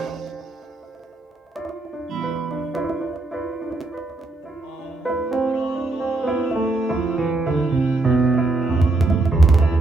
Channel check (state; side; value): quieter; left; 3.0 dB